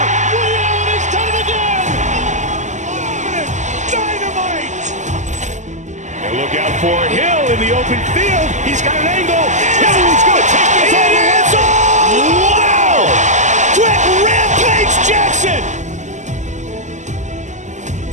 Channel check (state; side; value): late; left; 0.34 ms